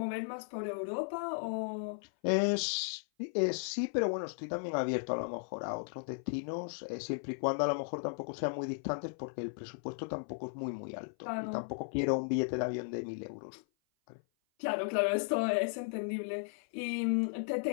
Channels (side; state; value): right; silent; 54 dB below the other